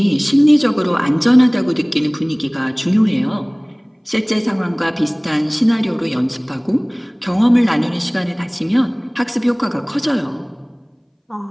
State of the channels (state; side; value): identical; both; correlation 1.00